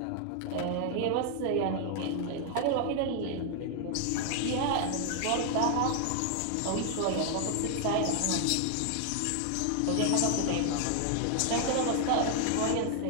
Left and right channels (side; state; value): both; different; correlation 0.00